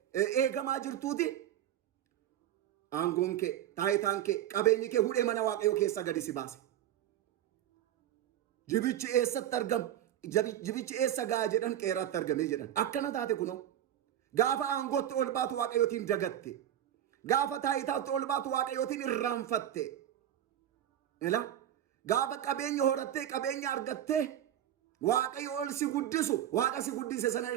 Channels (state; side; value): quieter; left; 11.4 dB